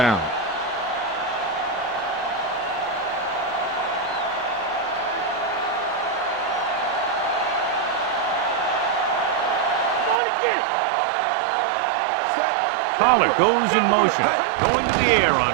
Pollard goes in motion, going to the air on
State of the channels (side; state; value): left; drops out; at 10.2 s